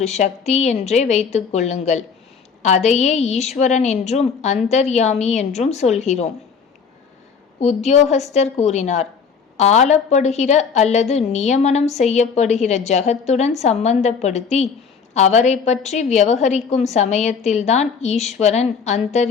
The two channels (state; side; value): quieter; right; 6.0 dB